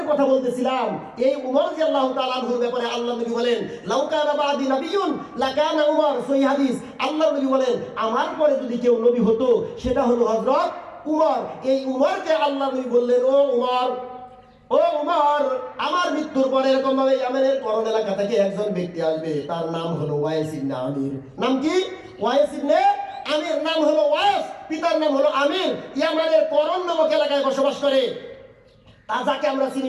কথা বলতেছিলাম, এই উমর রাদিয়াল্লাহু তাআলা আনহুর ব্যাপারে আল্লাহ নবী বলেন লাউ কানা বাদি নাবিয়্যুন লাকানা উমর। সহিহ হাদিস। আল্লাহ নবী বলেন আমার পরে যদি কেউ নবী হতো সেটা হলো হযরত উমর। এই উমরকে আল্লাহ নবী বললেন ও উমর, আমার মৃত্যুর পরে এরকম ভাবে ইয়ামেনের করণ এলাকা থেকে একজন ব্যক্তি আসবে, তার নাম হলো ওয়াইস ইবনে আমির। নাম কি? ওয়াইস ইবনে আমির। নাম হলো ওয়াইস, পিতার নাম হলো আমির। ইয়ামানের করণ নামক এলাকায় বসবাস করে, তা যাকে আমরা চিনি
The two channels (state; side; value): identical; both; correlation 1.00